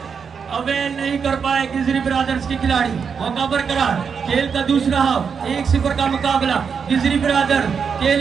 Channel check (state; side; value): quieter; left; 6.3 dB